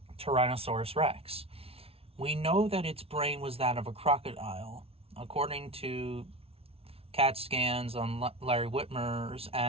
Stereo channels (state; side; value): late; left; 0.28 ms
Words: Tyrannosaurus Rex. We know that its brain was that of a crocodile. According to CAT scans on Larry Whitmer's,